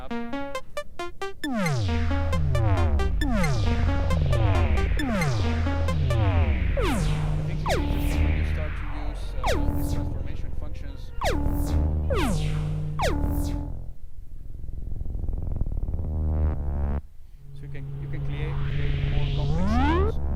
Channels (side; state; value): both; identical; correlation 1.00